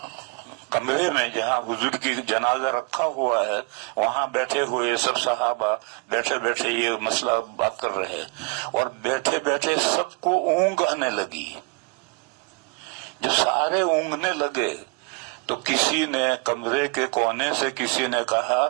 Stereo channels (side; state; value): left; quieter; 31.9 dB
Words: کمرے میں جہاں حضور کی جنازہ رکھا ہوا ہے وہاں بیٹھے ہوئے سب صحابہ بیٹھے بیٹھے یہ مسئلہ بات کر رہے، اور بیٹھے بیٹھے سب کو اونگ آنے لگی۔ جب سارے اونگنے لگے تو کسی نے کمرے کے کونے سے کسی نے کہا